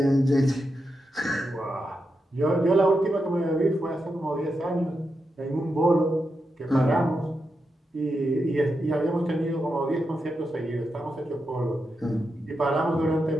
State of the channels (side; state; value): both; normal; correlation 0.87